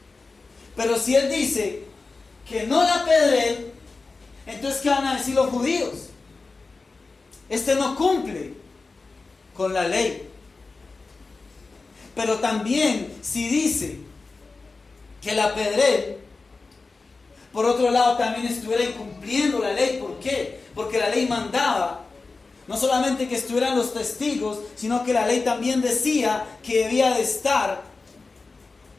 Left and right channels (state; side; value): quieter; right; 3.9 dB